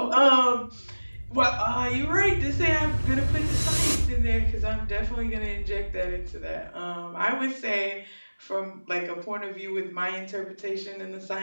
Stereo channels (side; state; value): both; inverted; correlation -1.00